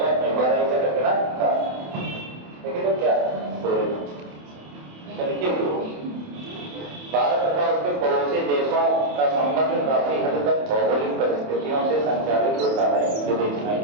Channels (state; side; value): late; left; 28 ms